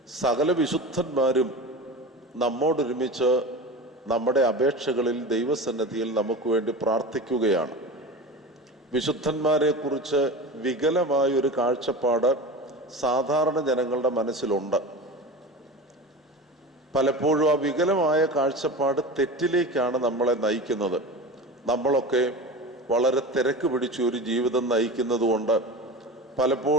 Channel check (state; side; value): normal; both; correlation 0.30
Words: സകല വിശുദ്ധന്മാരും നമ്മോടൊരുമിച്ച് നമ്മുടെ അപേക്ഷകളിൽ ദൈവസന്നിധിയിൽ നമുക്ക് വേണ്ടി പ്രാർത്ഥിക്കുകയാണ്. വിശുദ്ധന്മാരെക്കുറിച്ച് വികലമായൊരു കാഴ്ചപ്പാട് സാധാരണ ജനങ്ങളുടെ മനസ്സിലുണ്ട്. പലപ്പോഴും ആ വികലമായ കാഴ്ചപ്പാട് തെറ്റിലേക്കാണ് നമ്മളെ നയിക്കുന്നത്. നമ്മളൊക്കെ വളരെ തിരക്ക് പിടിച്ച ഒരു ജീവിതം നയിക്കുന്നത് കൊണ്ട്